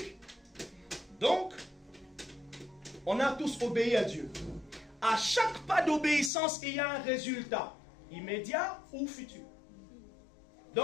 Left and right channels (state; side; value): drops out; right; at 6.3 s